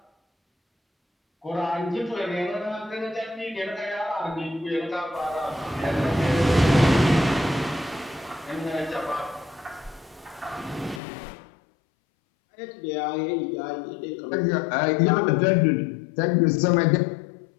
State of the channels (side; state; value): right; drops out; at 11.0 s